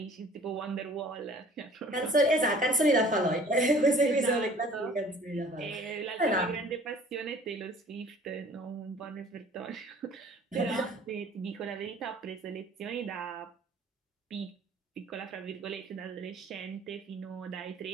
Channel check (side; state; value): both; normal; correlation 0.51